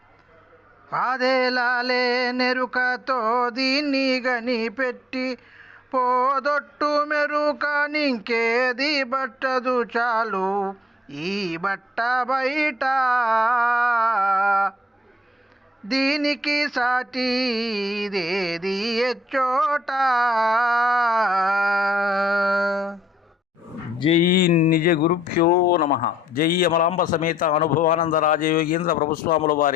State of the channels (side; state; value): both; normal; correlation 0.70